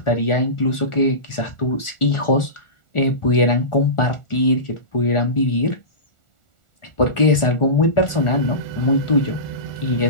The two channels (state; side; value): late; right; 1.4 ms